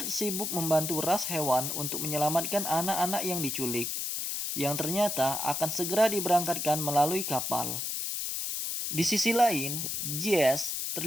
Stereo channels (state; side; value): noise; left; hiss, 2 dB below the sound